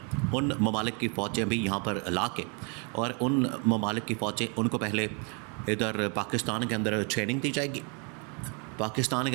ان ممالک کی فوجیں بھی یہاں پر لا کے، اور ان ممالک کی فوجیں ان کو پہلے ادھر پاکستان کے اندر ٹریننگ دی جائے گی۔ پاکستان کے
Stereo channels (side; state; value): left; quieter; 35.5 dB